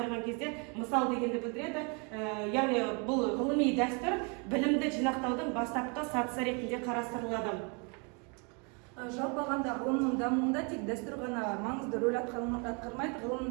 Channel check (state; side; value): quieter; left; 34.0 dB